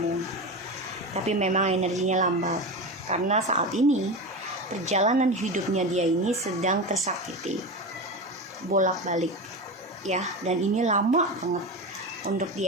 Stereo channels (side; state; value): both; normal; correlation 0.23